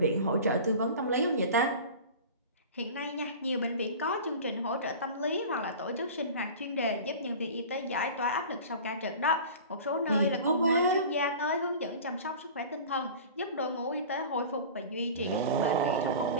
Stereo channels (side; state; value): both; inverted; correlation -0.37